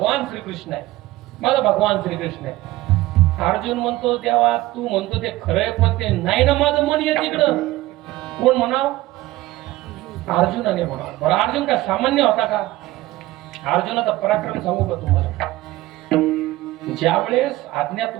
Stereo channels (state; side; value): quieter; left; 17.5 dB